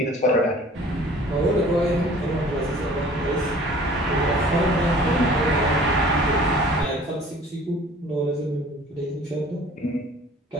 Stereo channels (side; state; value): both; normal; correlation 0.49